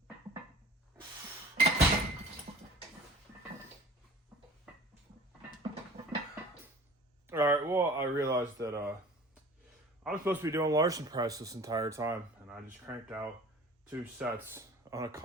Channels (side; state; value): both; normal; correlation 0.44